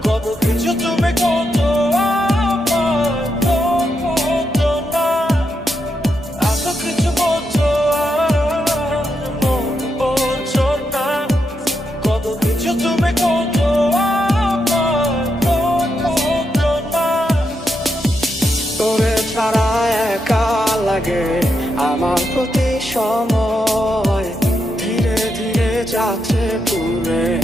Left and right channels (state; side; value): normal; both; correlation 0.83